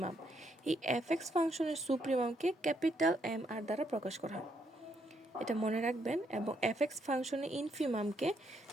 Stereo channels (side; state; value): both; normal; correlation 0.74